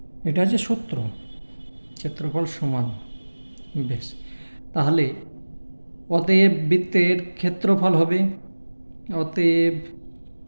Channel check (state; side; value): inverted; both; correlation -1.00